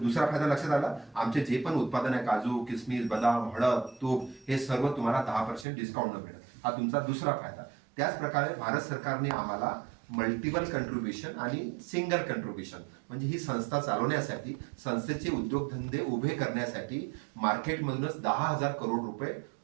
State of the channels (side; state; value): left; drops out; at 5.7 s